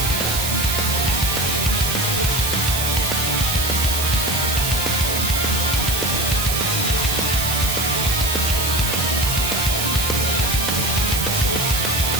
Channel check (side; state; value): right; noise; hiss, 2 dB below the sound